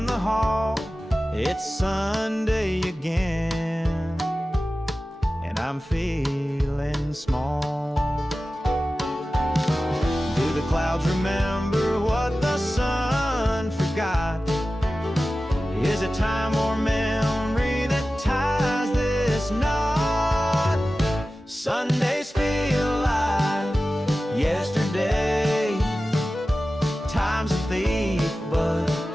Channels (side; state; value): both; normal; correlation 0.95